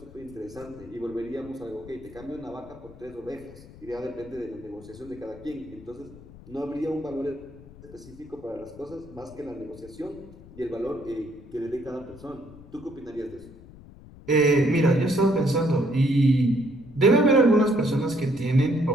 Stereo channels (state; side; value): noise; left; rumble, 19 dB below the sound